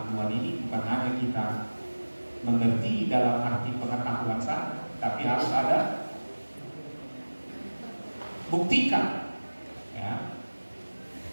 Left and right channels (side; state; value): both; inverted; correlation -1.00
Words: Tuhan ini bukan hanya kita mengerti dalam arti pengetahuan saja, tapi harus ada buktikan, ya.